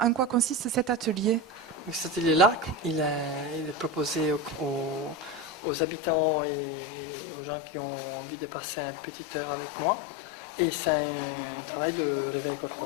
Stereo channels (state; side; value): drops out; right; at 5.6 s